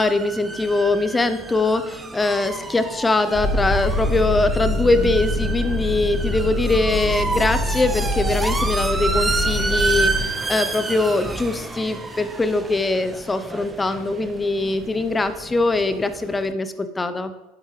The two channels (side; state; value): both; normal; correlation 0.78